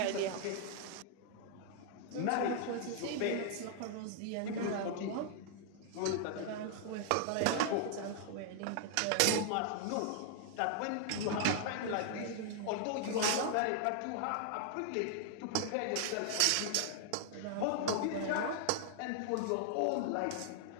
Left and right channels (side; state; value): both; different; correlation 0.00